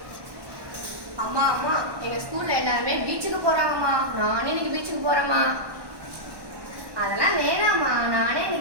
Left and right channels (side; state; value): left; late; 1.1 ms